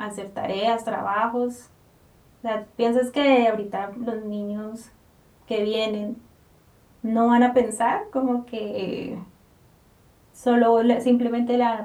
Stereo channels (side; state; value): both; identical; correlation 1.00